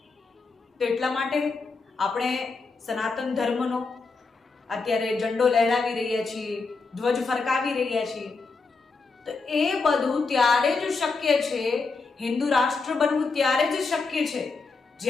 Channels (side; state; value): right; quieter; 4.2 dB